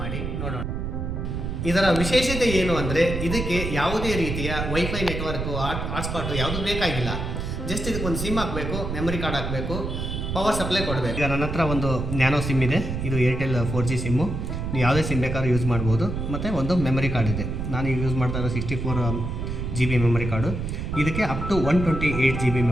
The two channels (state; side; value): noise; right; rumble, 4 dB below the sound